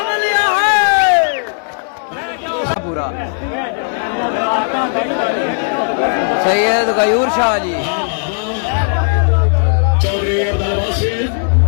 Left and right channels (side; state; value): right; silent; 69 dB below the other